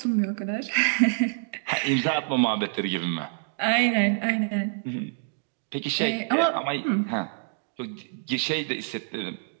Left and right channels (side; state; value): left; silent; digital silence